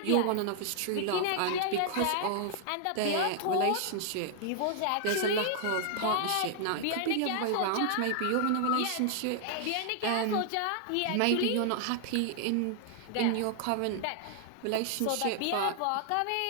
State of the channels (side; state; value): both; different; correlation 0.00